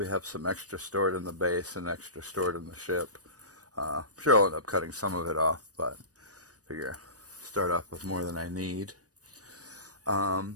have some extra stored in the base and extra stored in the ship. I'm sure I'll end up cutting some of it off, but figure start off with more than I need.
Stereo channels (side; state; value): left; late; 0.67 ms